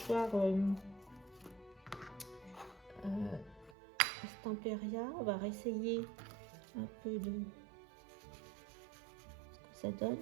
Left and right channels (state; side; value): drops out; left; at 3.8 s